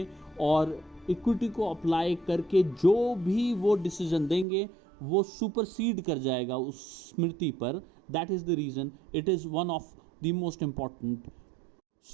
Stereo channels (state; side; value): drops out; left; at 4.5 s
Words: और इक्विटी को अप्लाई करके जो भी वो डिसीजन देंगे वो सुपरसीड कर जाएगा उस स्मृति पर. That is the reason it is one of the most important